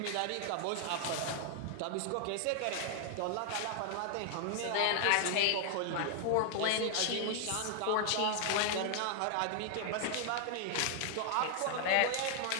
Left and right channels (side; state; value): both; different; correlation 0.00